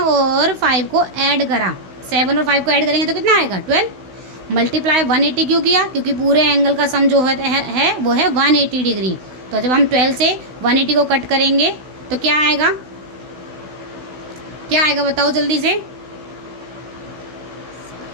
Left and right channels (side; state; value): left; late; 16 ms